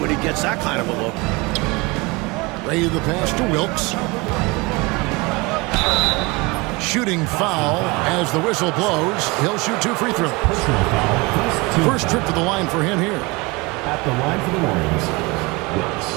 he gets that kind of a look. Ray the pass to Wilkes. Shooting foul as the whistle blows. He'll shoot 2 free throws. First trip to the line for him here. At the line for the Warriors, Wilkes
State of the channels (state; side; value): quieter; left; 25.3 dB